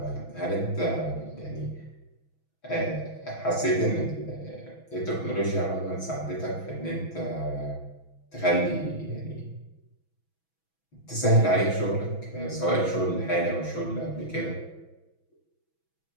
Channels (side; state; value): right; late; 6.1 ms